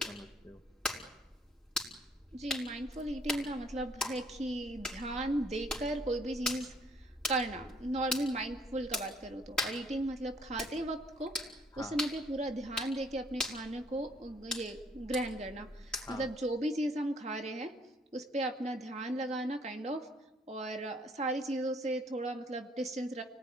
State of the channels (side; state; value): both; normal; correlation 0.63